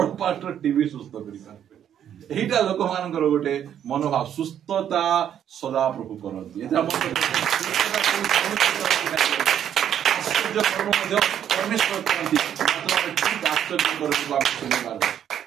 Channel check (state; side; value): quieter; left; 9.7 dB